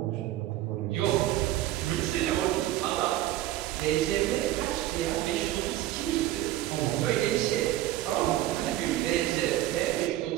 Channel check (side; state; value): left; quieter; 14.5 dB